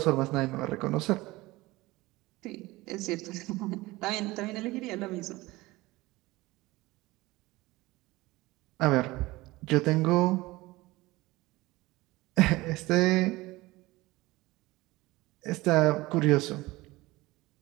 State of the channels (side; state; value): left; quieter; 20.1 dB